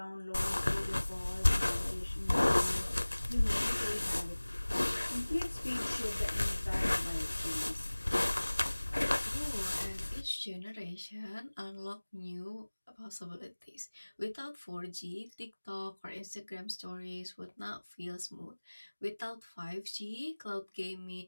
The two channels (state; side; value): inverted; both; correlation -1.00